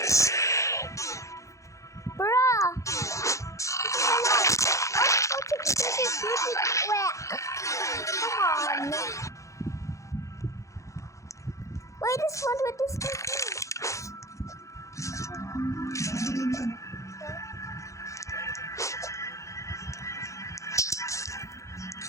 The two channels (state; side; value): late; right; 0.15 ms